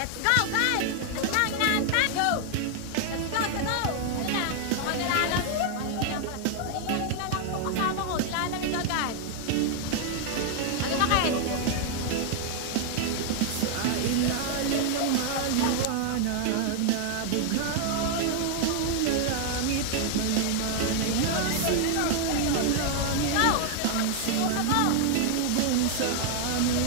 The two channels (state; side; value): different; both; correlation 0.00